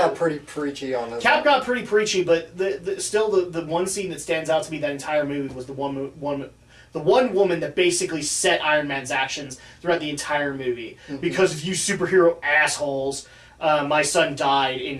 pretty preachy on this. Cap got pretty preachy, but still the one scene that stands out to me that entire movie was the one woman that basically set Iron Man's actions throughout the entire movie. Mm-hmm. Because of you superhero assholes, my son died in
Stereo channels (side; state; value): both; identical; correlation 1.00